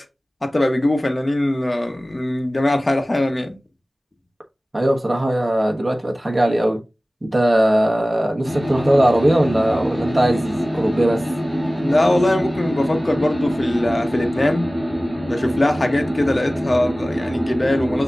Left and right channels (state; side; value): normal; both; correlation 0.97